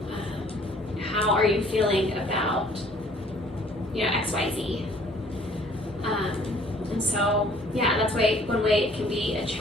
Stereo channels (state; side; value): normal; both; correlation 0.57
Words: How are you feeling about XYZ? And so that's one way it can be a